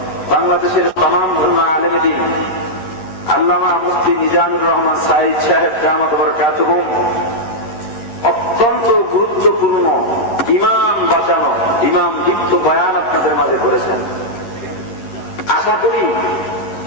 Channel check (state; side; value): late; right; 11 ms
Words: বাংলাদেশের তামাম আলেমে দ্বীন আল্লামা মুফতি মিজানুর রহমান সাঈদ সাহেব দামাত বরকাতুহুম অত্যন্ত গুরুত্বপূর্ণ ইমাম বাঁচানো, ইমাম দীপ্ত বয়ান আপনাদের মাঝে করেছেন। আশা করি